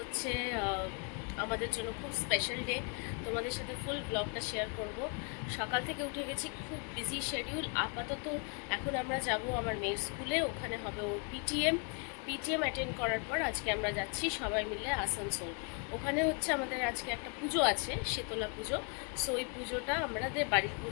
আমাদের জন্য খুব স্পেশাল ডে। তোমাদের সাথে ফুল ব্লগটা শেয়ার করব। সকাল থেকে উঠে গেছি, খুব বিজি শিডিউল। আপাতত এখন আমরা যাব আমার মেয়ের স্কুলে, ওখানে হবে ওর পিটিএম অ্যাটেন্ড করার পর আজকে আমরা যাচ্ছি সবাই মিলে আসানসোল। ওখানে হচ্ছে আমাদের আজকে একটা পুজো আছে, শীতলা পুজো। সো ওই পুজোটা আমাদের বাড়ির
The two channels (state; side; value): quieter; right; 37.1 dB